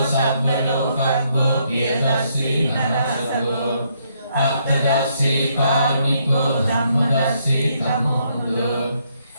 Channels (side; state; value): both; inverted; correlation -0.73